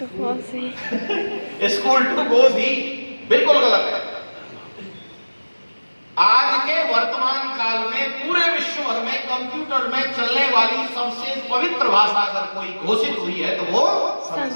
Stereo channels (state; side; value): inverted; both; correlation -1.00